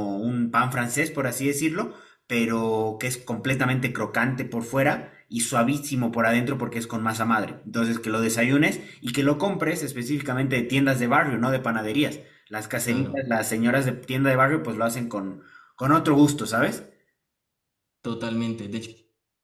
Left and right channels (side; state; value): both; identical; correlation 1.00